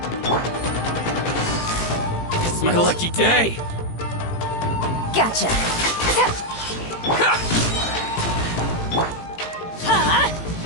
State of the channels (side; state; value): right; late; 18 ms